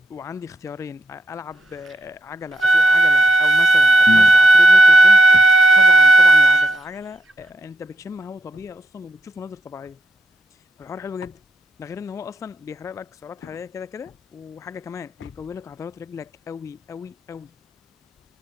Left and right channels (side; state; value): both; normal; correlation 0.80